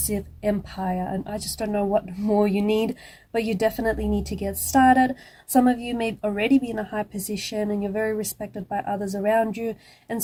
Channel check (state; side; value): identical; both; correlation 1.00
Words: empire. And I just don't know what more you need, but you definitely need to get started. Some of you may already be in a high position and you're very respected by others around you, and